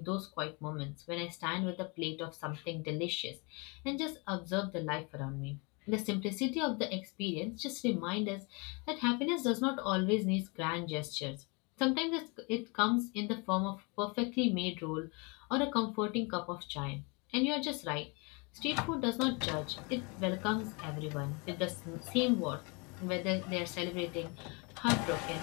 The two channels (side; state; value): right; quieter; 30.6 dB